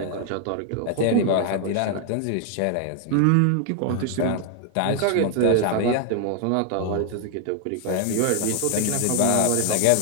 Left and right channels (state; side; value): different; both; correlation 0.00